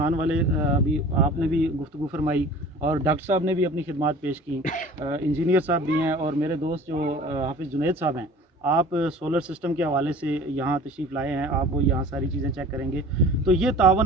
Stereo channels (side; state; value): both; normal; correlation 0.44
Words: वाले अभी आपने भी गुफ्तगू फरमाई और डॉक्टर साहब ने भी अपनी खिदमत पेश की, इंजीनियर साहब भी हैं और मेरे दोस्त जो हाफिज़ जुनैद साहब हैं, आप सोलर सिस्टम के हवाले से यहाँ तशरीफ़ लाए हैं, आप वो यहाँ सारी चीज़ें चेक करेंगे। तो ये